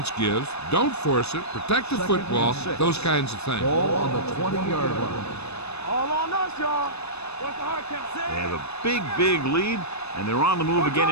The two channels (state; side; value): late; right; 0.80 ms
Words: gives, don't force it, protect the football, those kinds of things. Ball on the 20-yard line. All on us, y'all. What's the hard count? They have a big lead, and they're on the move again